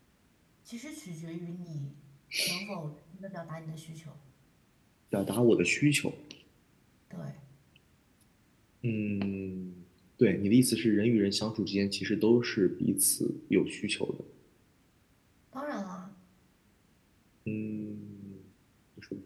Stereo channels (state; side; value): identical; both; correlation 1.00